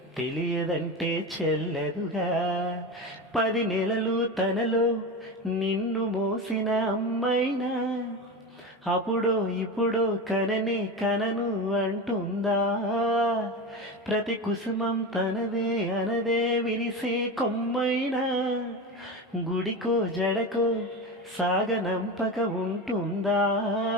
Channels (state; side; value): normal; both; correlation 0.23